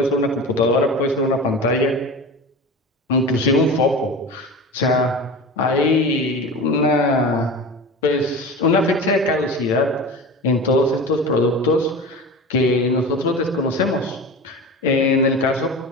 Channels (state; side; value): normal; both; correlation 0.31